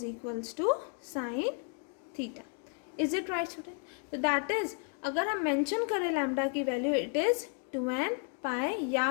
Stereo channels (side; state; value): right; quieter; 39.9 dB